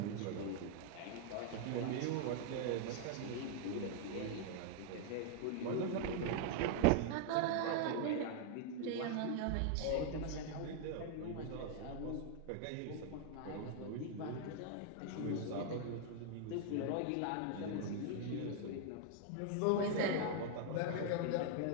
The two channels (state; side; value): different; both; correlation 0.00